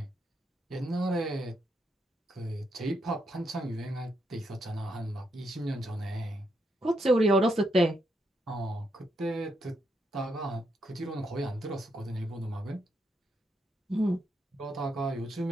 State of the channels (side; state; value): both; normal; correlation 0.79